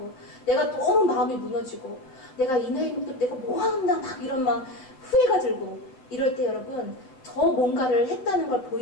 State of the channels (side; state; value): right; late; 7.7 ms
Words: 내가 너무 마음이 무너지고 내가 이 나이 먹도 내가 뭐 한다 막 이런 막 후회가 들고 이럴 때 여러분 더 뭔가를 했다는 걸